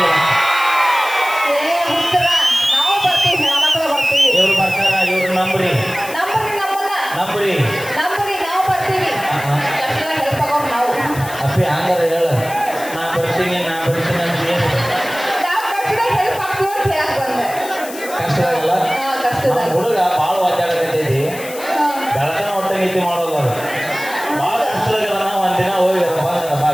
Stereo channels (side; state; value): left; noise; hiss, 14 dB below the sound